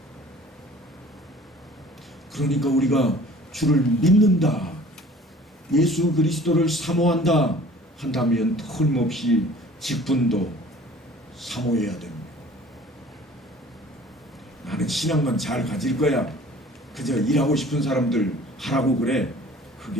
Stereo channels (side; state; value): both; normal; correlation 0.49